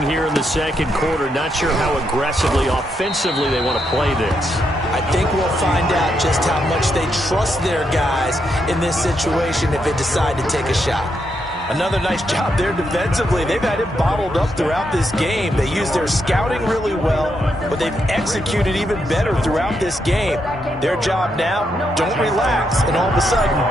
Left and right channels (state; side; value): normal; both; correlation 0.80